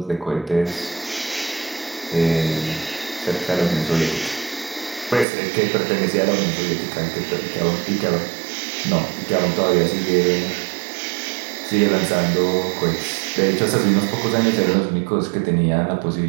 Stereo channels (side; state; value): left; drops out; at 5.2 s